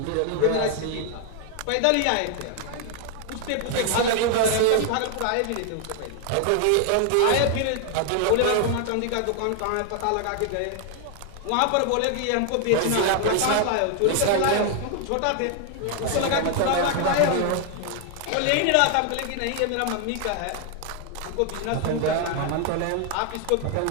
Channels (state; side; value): different; both; correlation 0.00